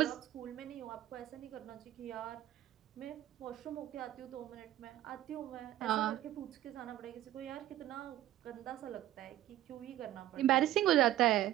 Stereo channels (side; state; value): left; quieter; 13.6 dB